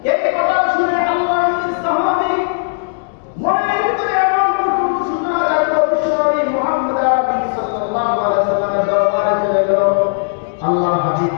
এই কথা শুনে আল্লাহর নবী সাহাবী মনের ভিতরে এমন প্রচন্ড সূচনা জাগলো, বিশ্বনবী মুহাম্মদ আরবি সাল্লাল্লাহু আলাইহি ওয়াসাল্লামের দরবারে চলে গেল। আল্লাহর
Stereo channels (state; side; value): silent; right; digital silence